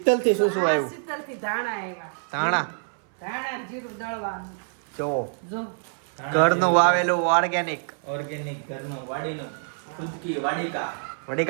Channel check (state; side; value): silent; left; 57 dB below the other